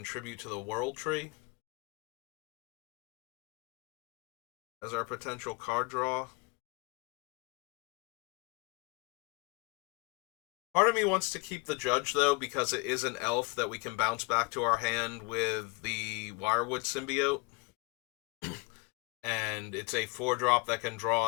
Tribute to the World Tree as our potential card draw. Part of me wants to keep the Judge, though, because it is an elf that we can bounce back to our hand with the Wirewood Symbiote. And it's a 4-drop that can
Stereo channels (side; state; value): right; quieter; 30.1 dB